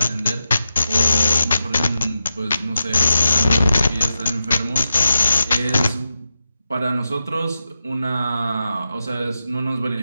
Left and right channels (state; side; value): inverted; both; correlation -0.89